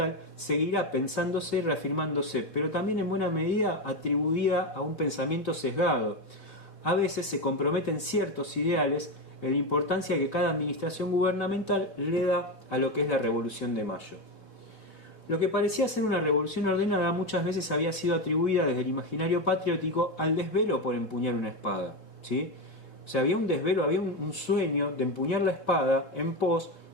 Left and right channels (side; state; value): right; late; 4.3 ms